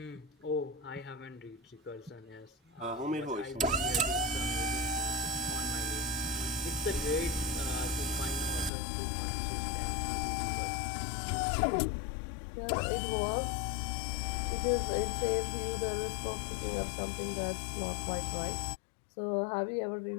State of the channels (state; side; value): drops out; right; at 8.7 s